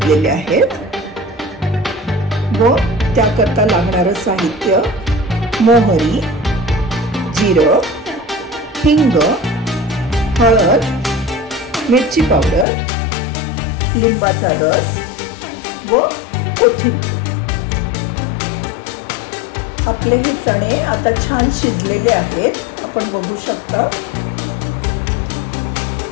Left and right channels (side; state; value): right; drops out; at 12.7 s